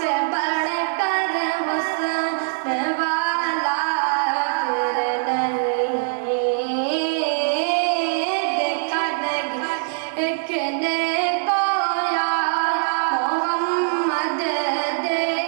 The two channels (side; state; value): left; silent; digital silence